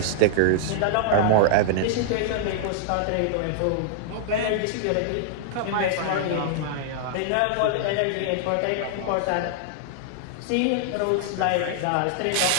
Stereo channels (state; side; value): different; both; correlation -0.01